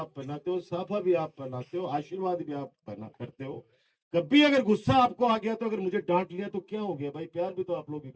पहनाते हो, साफा भी आप पहनाते हो, आशीर्वाद भी आप पहना करते हो, कभी अगर गुस्सा आपको आ गया तो अगर मुझे डांट लिया तो क्या हो गया भाई, प्यार भी तो आप लोग ही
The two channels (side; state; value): both; identical; correlation 1.00